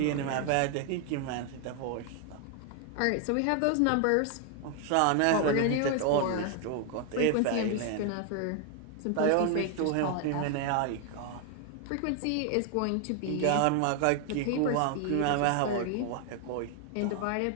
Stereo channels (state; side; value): different; both; correlation 0.00